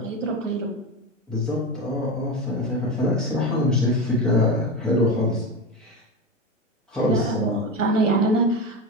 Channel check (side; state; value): both; normal; correlation 0.20